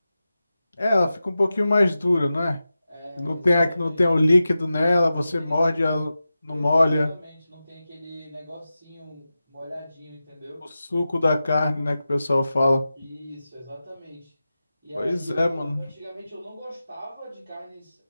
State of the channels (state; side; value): inverted; both; correlation -0.93